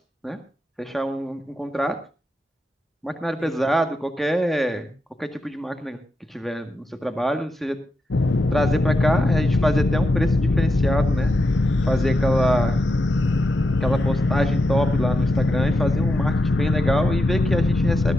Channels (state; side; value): normal; both; correlation 0.86